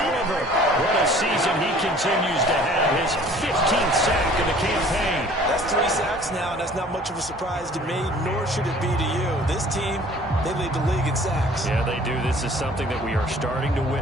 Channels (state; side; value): normal; both; correlation 0.51